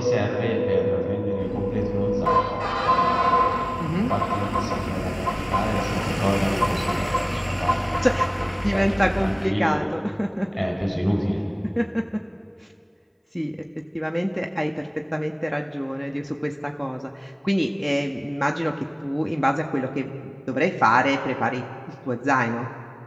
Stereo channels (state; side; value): identical; both; correlation 1.00